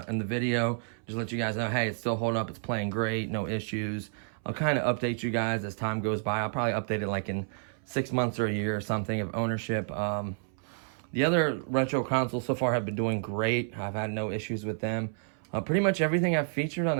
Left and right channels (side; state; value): left; silent; 58 dB below the other